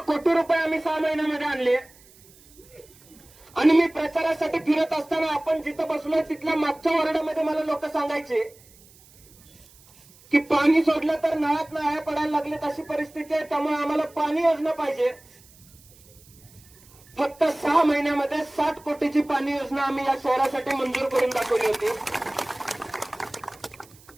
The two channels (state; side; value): noise; right; hiss, 26 dB below the sound